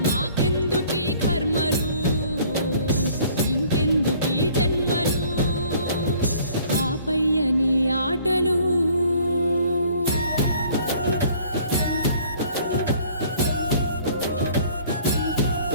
మాకెందుకీ కర్మలు ఇంకెందుకీ జన్మలు ఆపయ్యని ఆటలు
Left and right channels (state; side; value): inverted; both; correlation -0.55